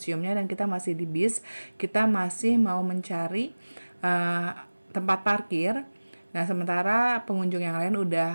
dan kita masih di bis. Kita masih mau mencari tempat parkir. Nah, sementara pengunjung yang lain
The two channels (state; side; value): inverted; both; correlation -1.00